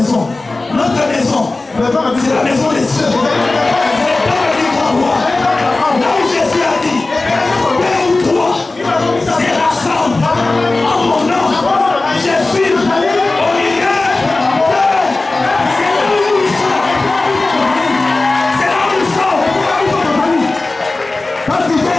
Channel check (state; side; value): quieter; right; 3.2 dB